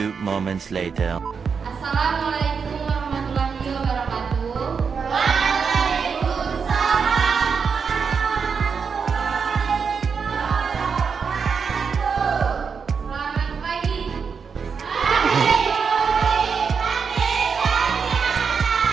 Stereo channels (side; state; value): left; quieter; 5.9 dB